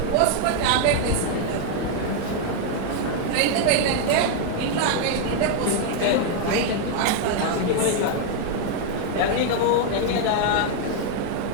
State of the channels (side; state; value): both; different; correlation 0.00